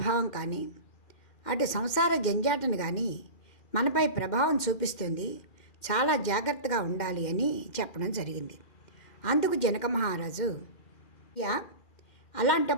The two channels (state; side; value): late; right; 2.1 ms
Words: కానీ అటు సంసార జంజాటను కానీ మనపై ప్రభావం చూపిస్తుంది, చాలా జాగ్రత్తగా ఉండాలి అని చెప్పడం జరిగింది. అందుకు జనక మహారాజు